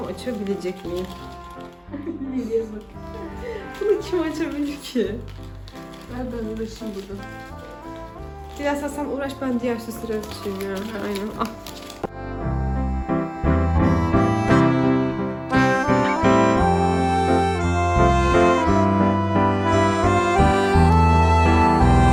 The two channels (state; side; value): identical; both; correlation 1.00